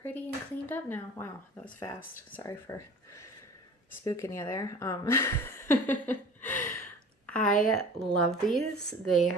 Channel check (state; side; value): normal; both; correlation 0.42